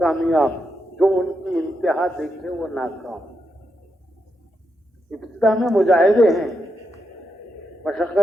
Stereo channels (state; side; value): normal; both; correlation 0.84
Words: جو ان کی انتہا دیکھے وہ ناکام۔ ابتدا میں مجاہدے ہیں،